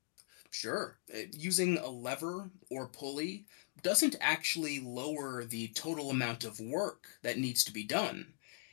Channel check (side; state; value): right; silent; 52 dB below the other